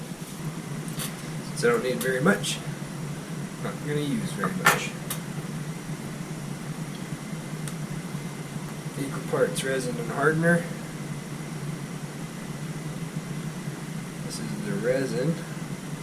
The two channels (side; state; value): both; identical; correlation 1.00